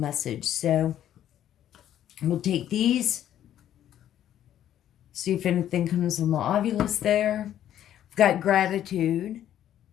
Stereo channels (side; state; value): right; quieter; 11.2 dB